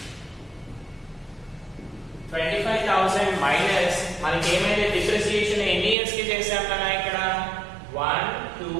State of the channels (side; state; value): left; drops out; at 6.0 s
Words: మైనస్ మనకి ఏమైతే డిప్రిసియేషన్ ఎన్ని ఇయర్స్ కి చేసాం కదా ఇక్కడ 1,